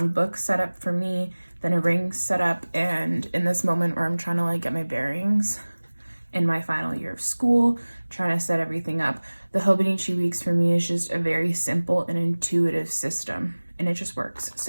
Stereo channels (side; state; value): both; inverted; correlation -1.00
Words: book setup for me than a ring setup. And in this moment where I'm trying to like get my bearings in my final year of school, trying to set everything up, the Hobonichi weeks for me is just a very simple and intuitive system, and it just works.